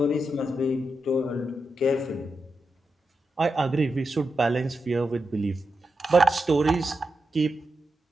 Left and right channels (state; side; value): normal; both; correlation 0.88